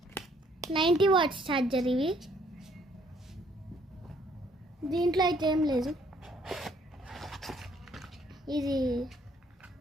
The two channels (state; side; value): normal; both; correlation 0.64